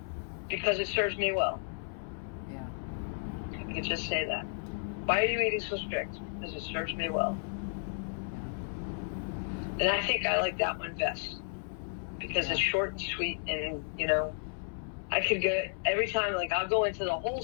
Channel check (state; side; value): silent; right; 56 dB below the other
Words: because it serves me well. Yeah. I could just say that. Why are you eating so strict? Because it serves me well. And I think I like that one best, because it's short and sweet, and, you know, I could go every time, like, I'll go into the whole